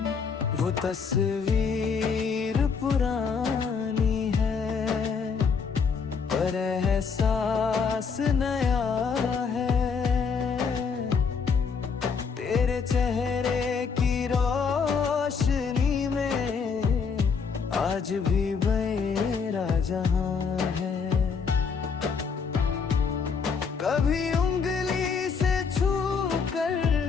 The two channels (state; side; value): quieter; right; 5.7 dB